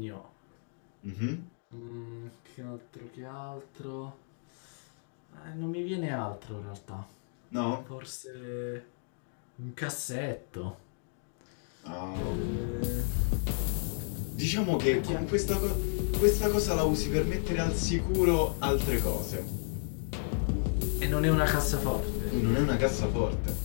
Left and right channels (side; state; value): right; silent; digital silence